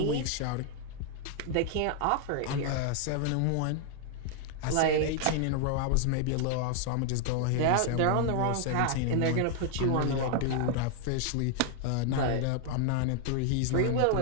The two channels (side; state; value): both; different; correlation 0.00